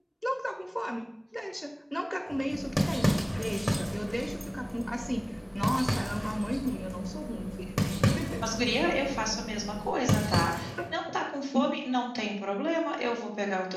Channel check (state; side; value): identical; both; correlation 1.00